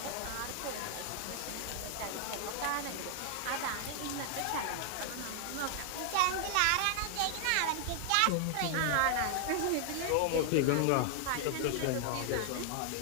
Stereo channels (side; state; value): both; different; correlation 0.00